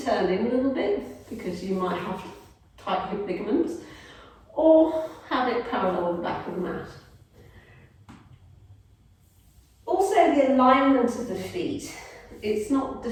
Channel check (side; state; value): both; identical; correlation 1.00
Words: in a little bit because you might have tight hip ligaments, or have it parallel with the back of the mat. Also, the alignment of the feet, it's not